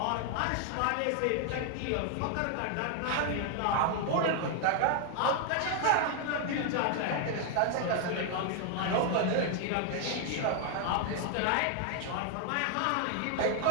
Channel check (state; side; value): different; both; correlation 0.00